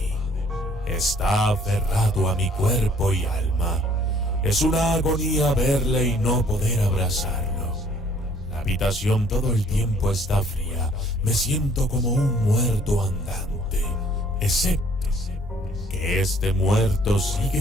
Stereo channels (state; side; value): normal; both; correlation 0.59